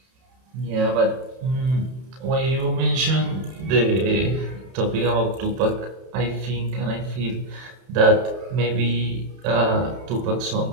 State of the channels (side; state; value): left; late; 31 ms